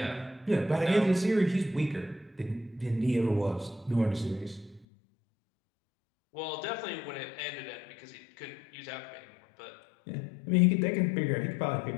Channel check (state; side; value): drops out; right; at 4.9 s